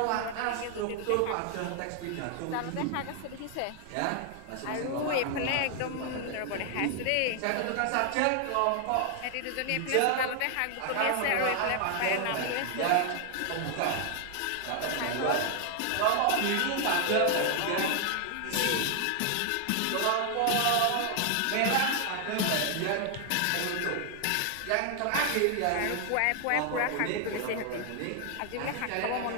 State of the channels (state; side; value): different; both; correlation 0.00